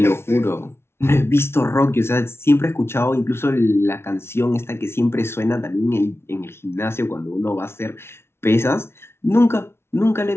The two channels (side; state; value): right; late; 0.12 ms